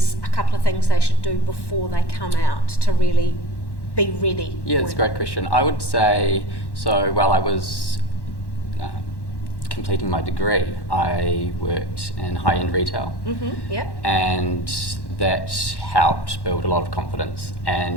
a couple of things they should do before they come out to really be ready? Yeah, that's a great question. I would say, so while I was completing my degree, I worked in high-end retail. Yeah. And that helped build a lot of confidence.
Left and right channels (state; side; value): late; right; 1.1 ms